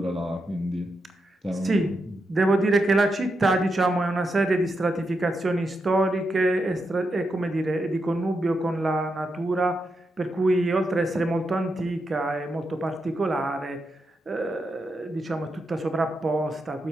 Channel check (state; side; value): normal; both; correlation 0.85